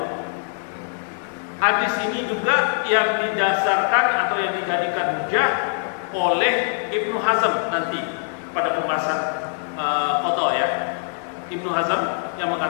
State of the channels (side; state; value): right; silent; 62 dB below the other